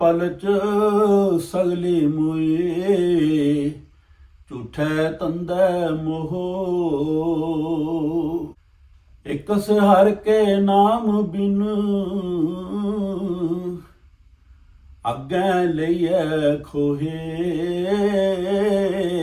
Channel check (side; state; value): both; identical; correlation 1.00